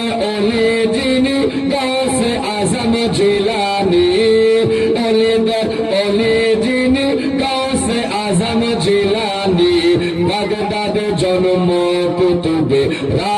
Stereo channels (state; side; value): identical; both; correlation 1.00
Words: ওলি যিনি গাউসে আজম জিলানী, ওলি দর ওলি যিনি গাউসে আজম জিলানী, বাগদাদ জন্ম কুতুবে